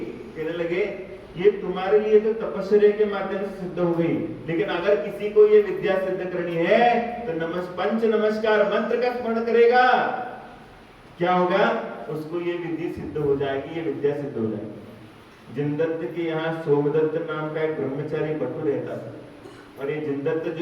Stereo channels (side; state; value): both; identical; correlation 1.00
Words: कहने लगे ये तुम्हारे लिए तो तपस्या के माध्यम से सिद्ध हो गई, लेकिन अगर किसी को ये विद्या सिद्ध करनी है तो पंच नमस्कार मंत्र का स्मरण करेगा, क्या होगा, उसको ये विधि सिद्ध हो जाएगी, ये विद्या सिद्ध हो जाएगी। जिनदत्त के यहाँ सोमदत्त नाम का एक ब्रह्मचारी बटू रहता था, और ये जिनदत्त